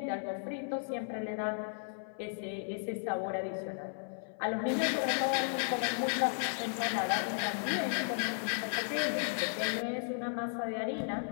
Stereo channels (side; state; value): right; silent; 55 dB below the other